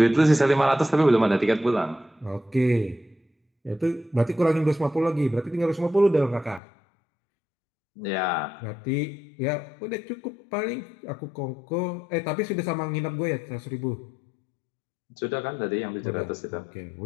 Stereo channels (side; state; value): right; drops out; at 6.6 s